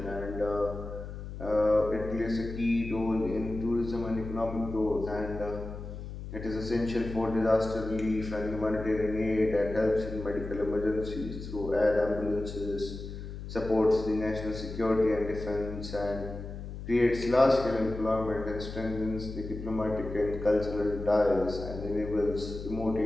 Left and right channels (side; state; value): left; noise; hum, 9 dB below the sound